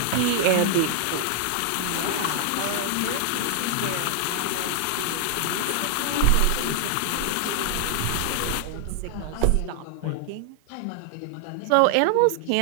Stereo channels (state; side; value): different; both; correlation 0.00